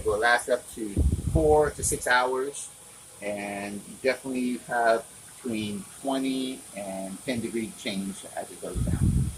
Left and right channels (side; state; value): both; identical; correlation 1.00